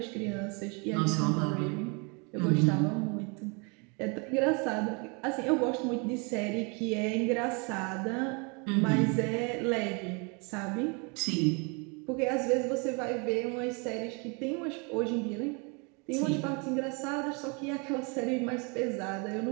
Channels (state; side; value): quieter; left; 32.5 dB